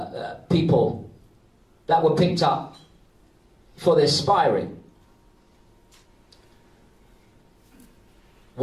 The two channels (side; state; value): both; identical; correlation 1.00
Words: people that were picked up for this spy ring.